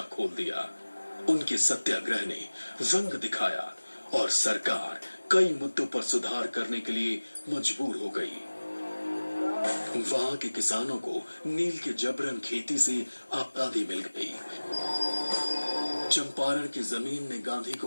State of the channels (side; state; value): both; inverted; correlation -1.00